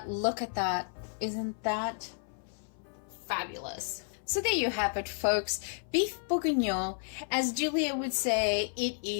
Look at that. Isn't that fabulous? So there you have it, folks. Beef bourguignon, as Julia would say, it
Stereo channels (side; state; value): right; silent; 56 dB below the other